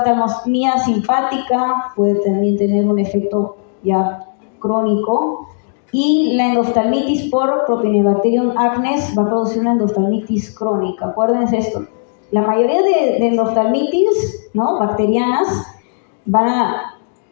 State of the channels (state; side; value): silent; right; digital silence